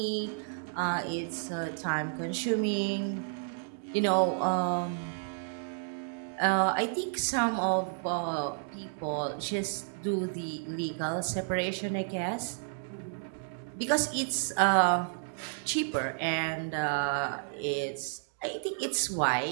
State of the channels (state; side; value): silent; left; digital silence